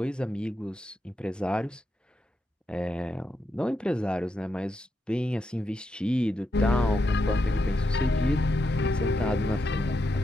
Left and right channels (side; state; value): both; normal; correlation 0.83